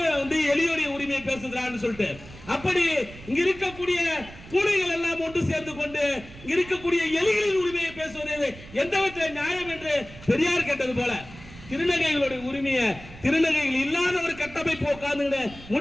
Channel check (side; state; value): right; noise; rumble, 17 dB below the sound